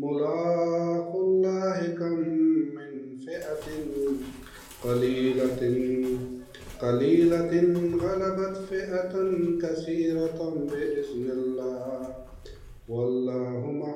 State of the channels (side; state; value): both; identical; correlation 1.00